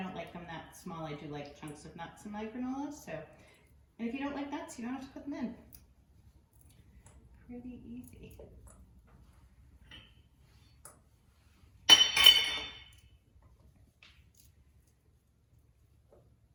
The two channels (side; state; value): both; identical; correlation 1.00